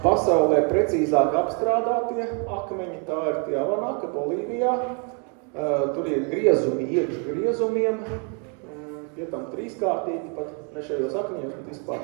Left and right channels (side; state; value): left; quieter; 38.0 dB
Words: pasaulē precīzāk apstrādātie akmeņi, tā ir tie Avanaka, Bolīvijā. Tur ir griezumi, iekš griezumiem, pie tam 3-kārtīgi, pat ne šajos akmeņos, bet